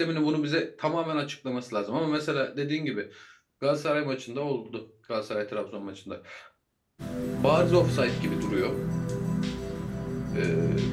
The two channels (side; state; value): both; identical; correlation 1.00